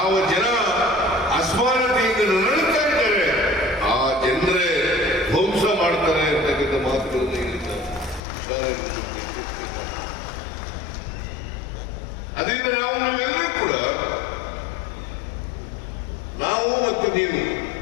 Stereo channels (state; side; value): drops out; right; at 8.2 s